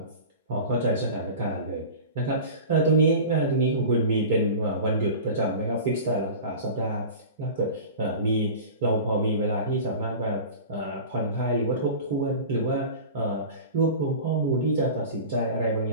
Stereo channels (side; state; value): both; inverted; correlation -0.34